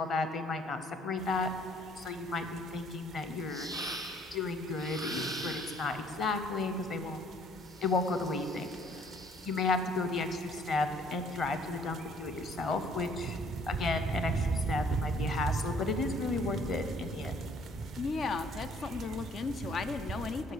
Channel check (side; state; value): both; normal; correlation 0.60